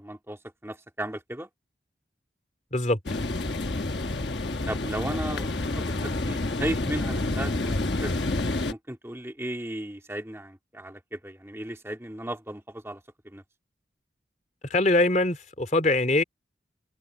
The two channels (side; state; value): both; normal; correlation 0.57